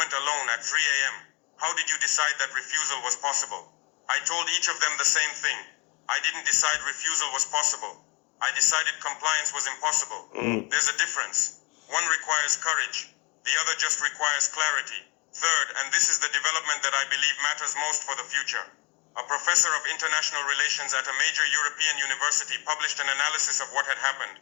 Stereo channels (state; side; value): quieter; right; 29.5 dB